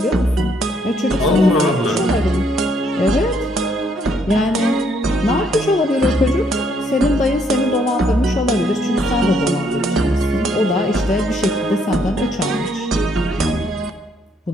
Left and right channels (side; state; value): both; normal; correlation 0.70